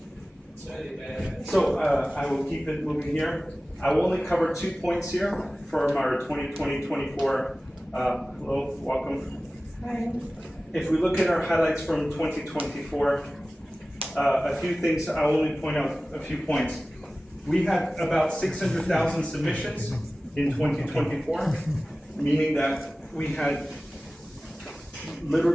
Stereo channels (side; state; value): both; normal; correlation 0.96